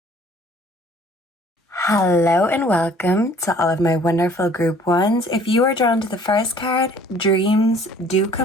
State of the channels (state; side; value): normal; both; correlation 0.54